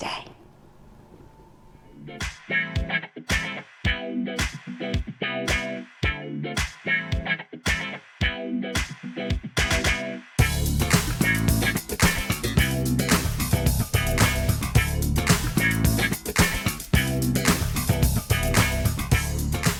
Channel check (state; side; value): identical; both; correlation 1.00